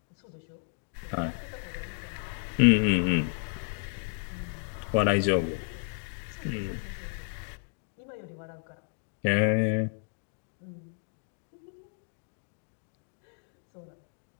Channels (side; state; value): right; silent; 56 dB below the other